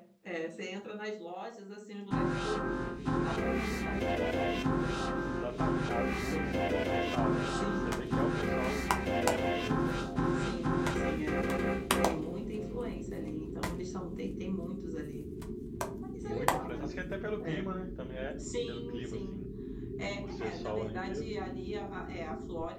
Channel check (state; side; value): identical; both; correlation 1.00